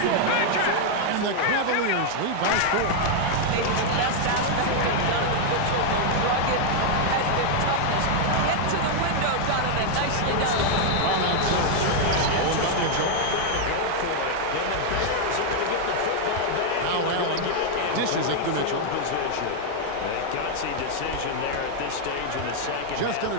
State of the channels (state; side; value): different; both; correlation 0.00